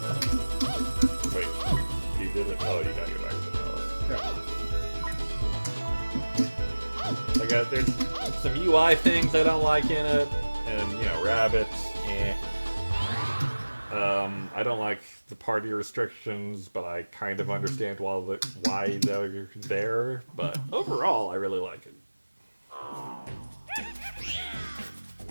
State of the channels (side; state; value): both; inverted; correlation -1.00